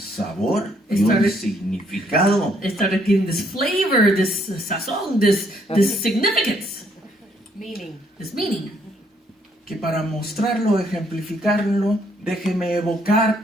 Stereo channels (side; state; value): both; normal; correlation 0.69